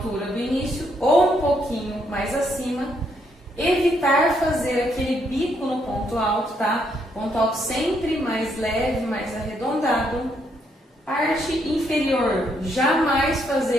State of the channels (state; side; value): normal; both; correlation 0.74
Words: do início ou um pouquinho mais acima. Evitar fazer aquele bico no ponto alto, tá? Ponto alto sempre mais leve, mais arredondado. Parte inferior, jamais